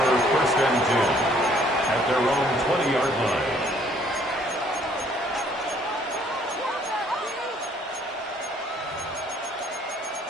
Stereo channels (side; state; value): both; normal; correlation 0.62